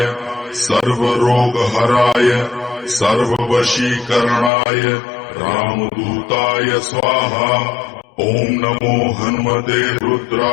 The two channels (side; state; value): right; drops out; at 4.5 s